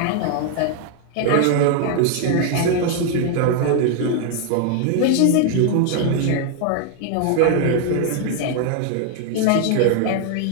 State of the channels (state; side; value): different; both; correlation 0.00